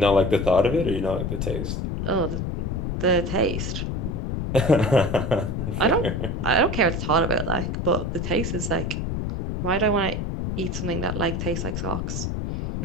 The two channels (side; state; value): left; noise; rumble, 2 dB below the sound